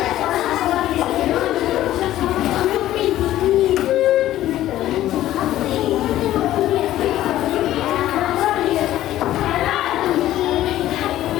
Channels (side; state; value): right; quieter; 13.9 dB